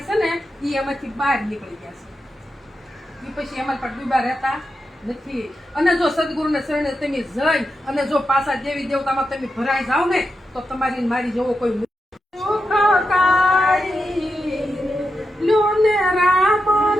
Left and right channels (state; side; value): normal; both; correlation 0.87